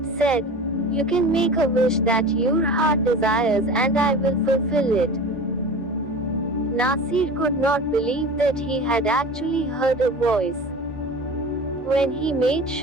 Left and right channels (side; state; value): both; normal; correlation 0.36